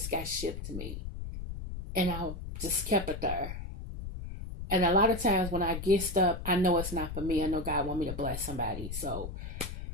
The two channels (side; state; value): left; noise; rumble, 7 dB below the sound